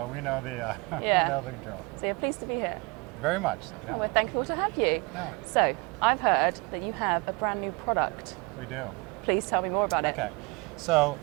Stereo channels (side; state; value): left; quieter; 27.2 dB